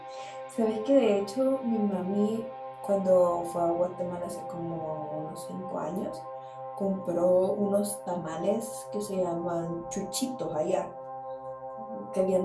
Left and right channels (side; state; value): both; identical; correlation 1.00